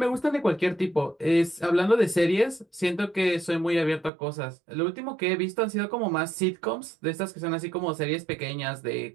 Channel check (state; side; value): drops out; left; at 4.1 s